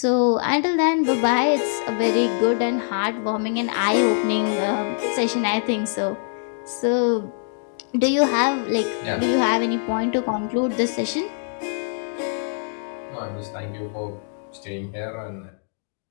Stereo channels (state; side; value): silent; right; digital silence